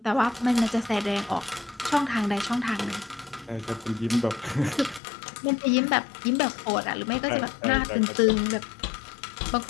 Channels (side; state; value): right; drops out; at 5.0 s